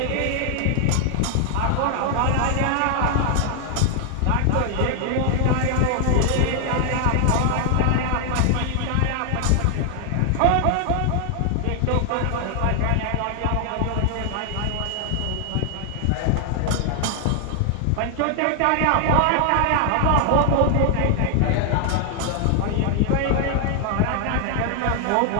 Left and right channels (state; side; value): different; both; correlation 0.00